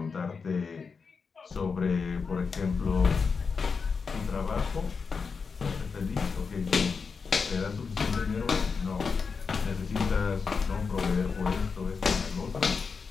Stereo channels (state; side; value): quieter; right; 5.2 dB